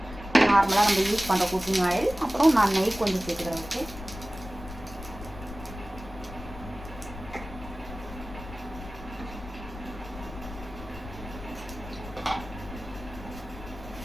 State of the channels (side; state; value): left; noise; rumble, 13 dB below the sound